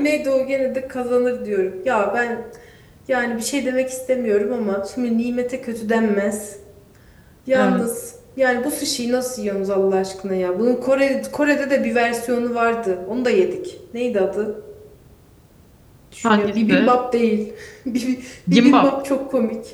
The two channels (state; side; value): identical; both; correlation 1.00